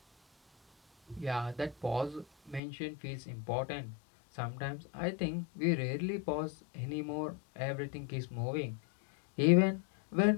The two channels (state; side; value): drops out; right; at 2.6 s